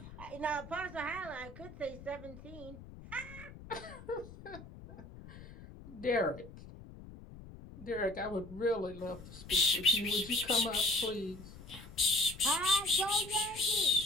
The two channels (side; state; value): left; noise; rumble, 16 dB below the sound